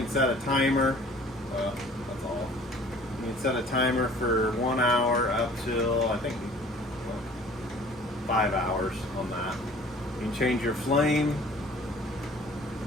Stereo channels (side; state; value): both; normal; correlation 0.50